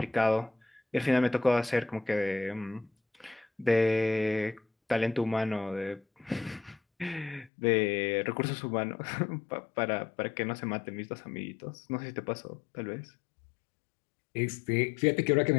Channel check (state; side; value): drops out; right; at 7.5 s